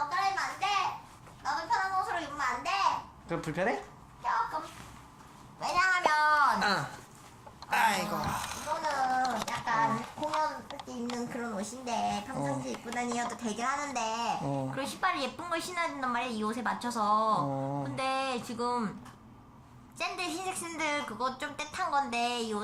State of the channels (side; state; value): both; identical; correlation 1.00